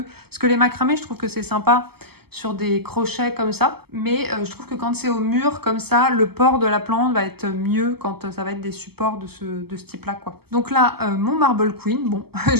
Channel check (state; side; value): late; left; 0.96 ms